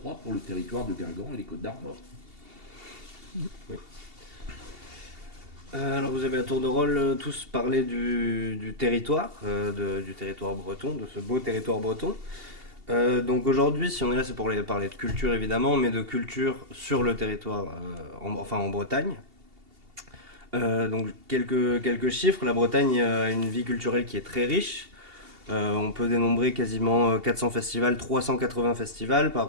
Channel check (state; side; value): late; left; 2.8 ms